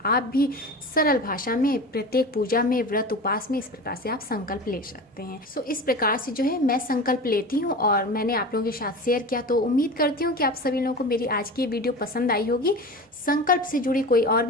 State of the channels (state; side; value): normal; both; correlation 0.32